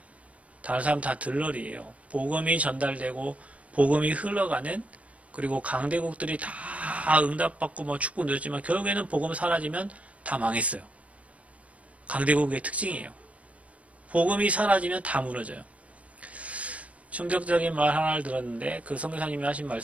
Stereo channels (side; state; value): left; late; 0.065 ms